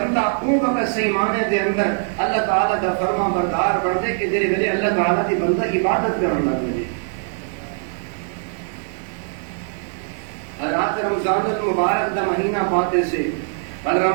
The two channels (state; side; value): silent; left; 59 dB below the other